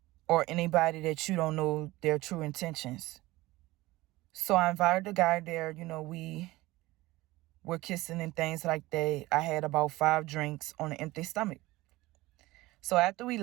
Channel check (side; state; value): left; quieter; 19.1 dB